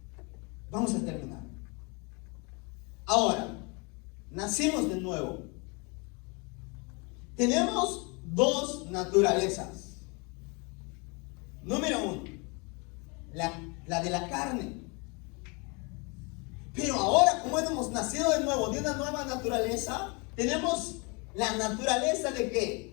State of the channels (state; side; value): quieter; right; 30.8 dB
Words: Vamos a terminar. Ahora, nacimos de nuevo. Tenemos dos naturalezas. Número uno, la de la carne. Pero ahora, como hemos nacido de nuevo, de una nueva naturaleza, tenemos la naturaleza de